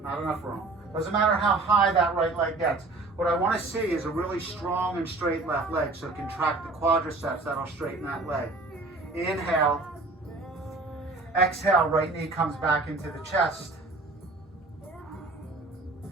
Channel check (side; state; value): left; quieter; 3.3 dB